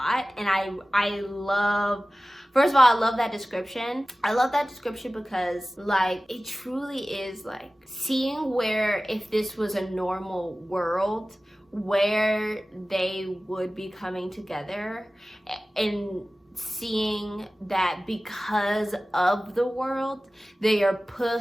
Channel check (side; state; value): both; normal; correlation 0.97